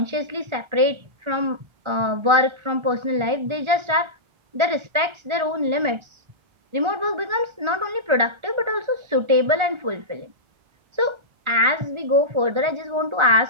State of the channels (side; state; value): left; late; 1.4 ms